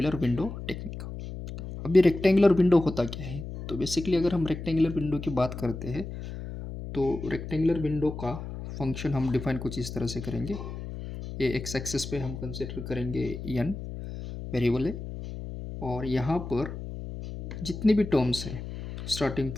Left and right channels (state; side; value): noise; left; hum, 9 dB below the sound